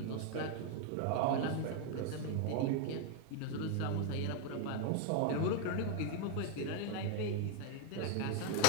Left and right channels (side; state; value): both; different; correlation 0.00